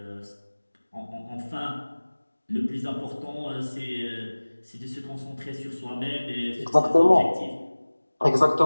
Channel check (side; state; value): both; inverted; correlation -1.00